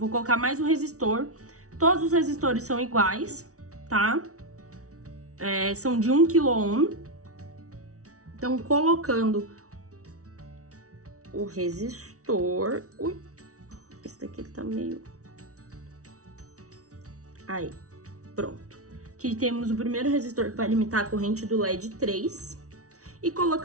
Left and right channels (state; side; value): late; left; 0.65 ms